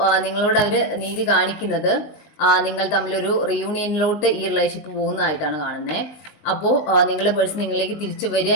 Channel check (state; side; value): late; right; 20 ms